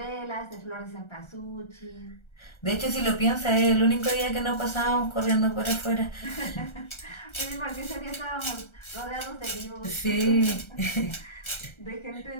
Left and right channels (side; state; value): right; late; 1.3 ms